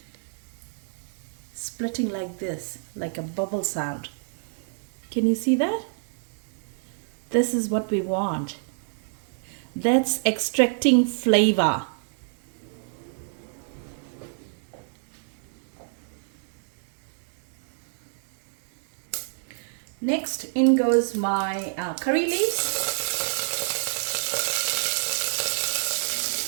splitting like this, like a bubble sound. Can you see that? This is what we want. That's extracting flavor. Next in goes my curry leaves.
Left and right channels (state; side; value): silent; left; digital silence